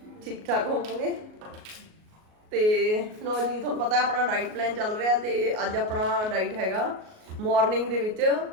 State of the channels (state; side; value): late; left; 38 ms